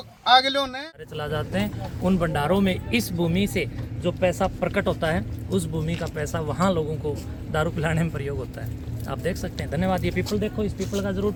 आगे लो ने चला जाते हैं उन भंडारों में। इस भूमि से जो पैसा प्रकट होता है उस भूमि का पैसा वहाँ लोगों को दारू पिलाने में प्रयोग होता है। आप देख सकते हैं। धन्यवाद। ये पीपल देखो, इस पीपल का जरूर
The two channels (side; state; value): both; identical; correlation 1.00